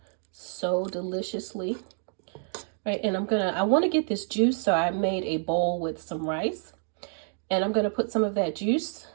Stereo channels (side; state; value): left; silent; 59 dB below the other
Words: so deliciously. Right, and I wanna get this juice, so I made a bowl with some rice. And I'm gonna put some of that juice